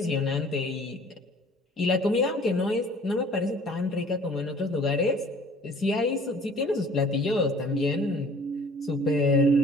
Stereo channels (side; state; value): both; normal; correlation 0.51